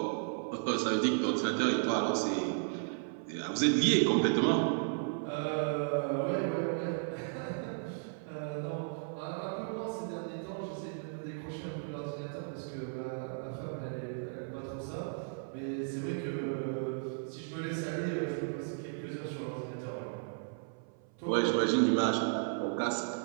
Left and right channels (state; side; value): silent; left; 55 dB below the other